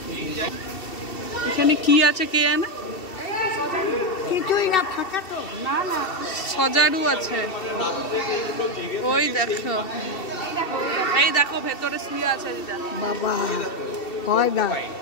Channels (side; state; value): right; late; 2.7 ms